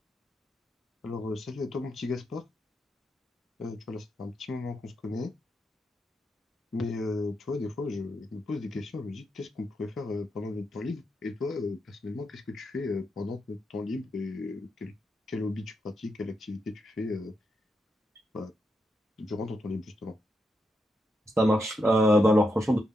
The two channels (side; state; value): both; normal; correlation 0.83